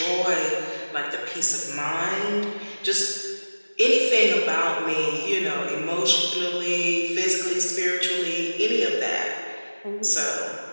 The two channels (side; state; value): both; inverted; correlation -1.00